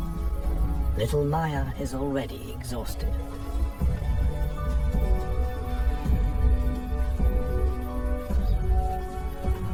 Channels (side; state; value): both; identical; correlation 1.00